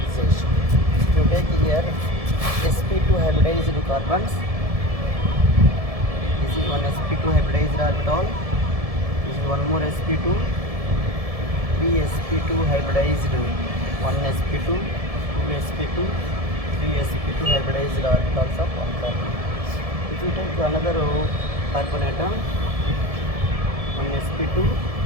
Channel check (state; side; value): late; left; 1.7 ms